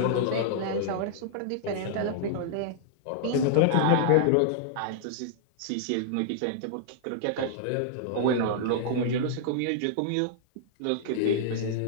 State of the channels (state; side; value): different; both; correlation -0.01